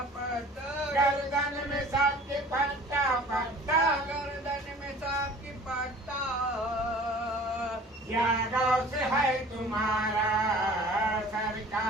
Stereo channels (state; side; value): normal; both; correlation 0.46